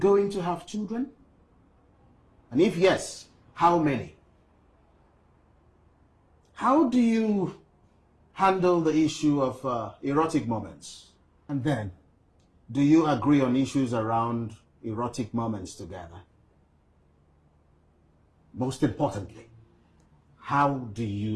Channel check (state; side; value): identical; both; correlation 1.00